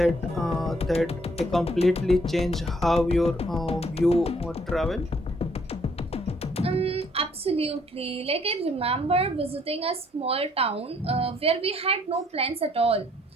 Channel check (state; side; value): normal; both; correlation 0.65